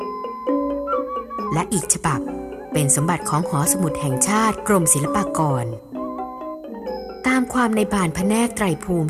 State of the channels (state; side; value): identical; both; correlation 1.00